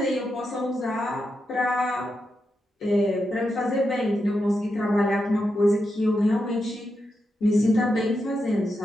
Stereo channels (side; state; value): both; normal; correlation 0.86